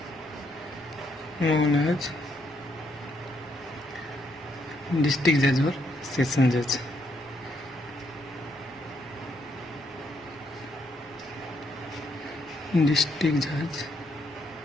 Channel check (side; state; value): both; normal; correlation 0.74